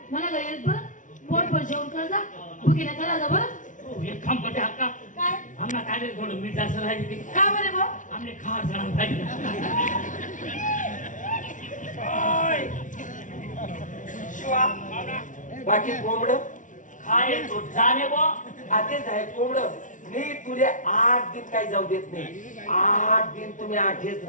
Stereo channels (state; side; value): late; right; 0.37 ms